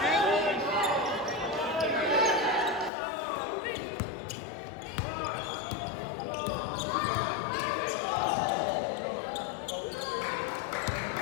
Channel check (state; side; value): drops out; right; at 2.9 s